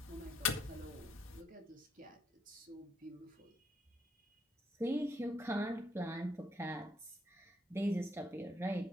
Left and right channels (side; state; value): both; normal; correlation 0.74